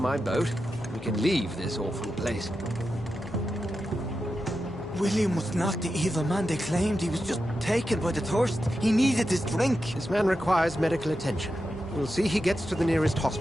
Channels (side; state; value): both; normal; correlation 0.89